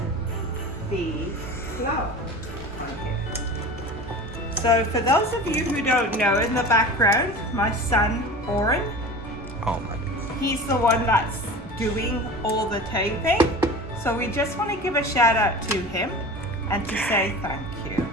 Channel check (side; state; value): both; normal; correlation 0.35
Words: the flour on here. So for those of you who don't know, in the background, my son Oren, Oh my goodness. he's the one that's doing all the taping. So we just want to give a shout out to him and to say thank you.